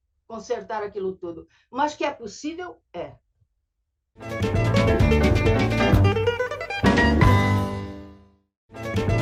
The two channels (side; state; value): both; identical; correlation 1.00